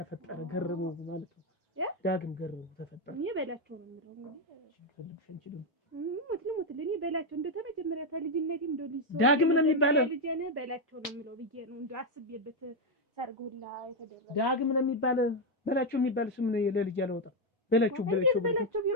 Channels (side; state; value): both; normal; correlation 0.04